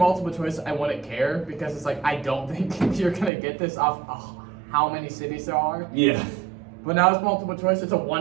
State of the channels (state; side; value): drops out; left; at 3.3 s